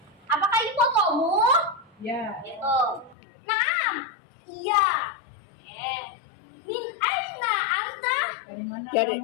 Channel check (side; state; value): right; drops out; at 3.2 s